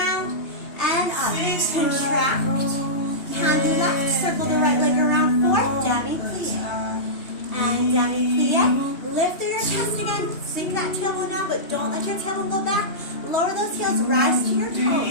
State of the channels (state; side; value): late; right; 2.8 ms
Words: and up. Contract. Hand do left. Circle the right leg around. Fourth. Demi plie. And demi plie. Lift through your chest again. Sink that tailbone down, but don't let your tailbone go back. Lower those heels. Rise to your